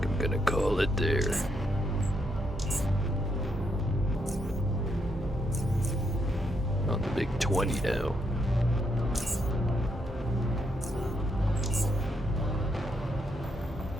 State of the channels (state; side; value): normal; both; correlation 0.77